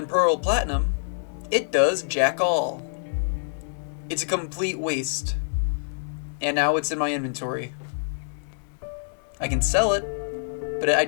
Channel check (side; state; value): right; silent; digital silence